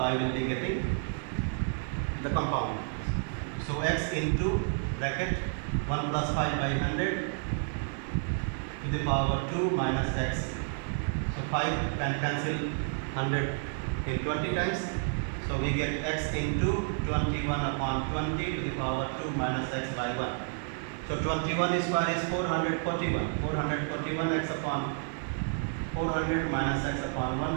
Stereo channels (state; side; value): silent; left; 55 dB below the other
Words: will be getting the compound. So x into bracket 1 plus 5 by 100 to the power 2 minus x. So 5 can cancel 100 in 20 times. So we get x into 21 upon 20 to the power 2 minus x by 1. So 21 square is 441. 441 x upon 400 minus x upon